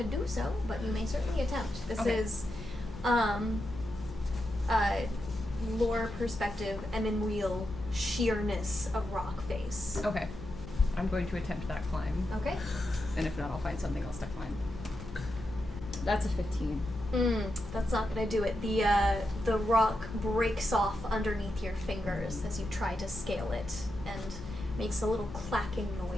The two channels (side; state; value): left; noise; hum, 13 dB below the sound